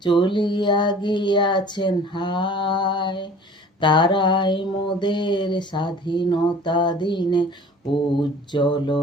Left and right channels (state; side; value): normal; both; correlation 0.46